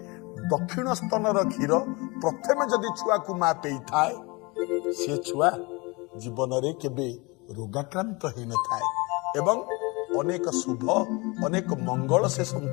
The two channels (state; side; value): quieter; right; 26.4 dB